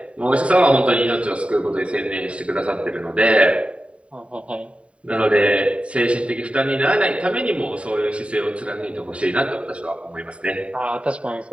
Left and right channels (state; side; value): late; left; 0.062 ms